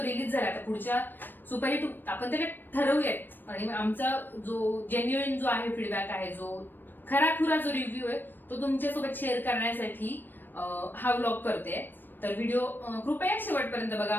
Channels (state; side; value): late; right; 0.093 ms